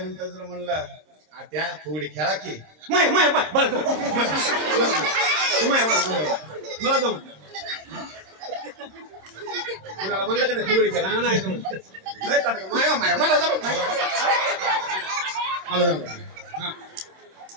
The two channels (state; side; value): late; left; 26 ms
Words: नंतर जर म्हणलं त्या फुगडी खेळा की मला जमत कुणाला म्हणलं का नाही फुगडी खेळा? नाही जमत. मला जमत नाही. मला जमत.